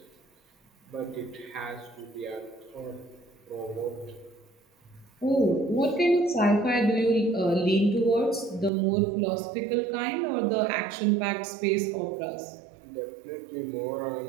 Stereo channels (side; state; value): left; drops out; at 8.7 s